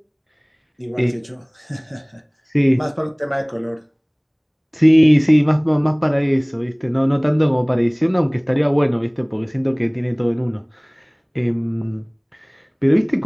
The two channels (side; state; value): both; identical; correlation 1.00